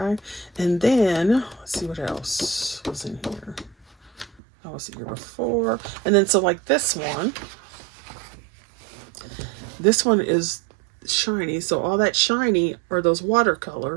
And then let's see what else was in here. I was here before. And then so like this one is shiny. So all that shiny are those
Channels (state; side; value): drops out; left; at 4.4 s